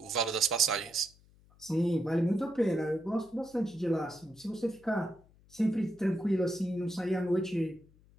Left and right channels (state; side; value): noise; left; hum, 28 dB below the sound